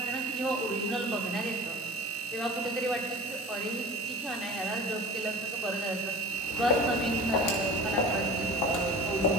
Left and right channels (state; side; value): normal; both; correlation 0.37